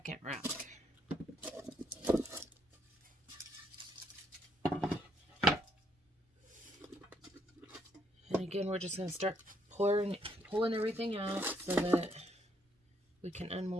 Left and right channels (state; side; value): normal; both; correlation 0.72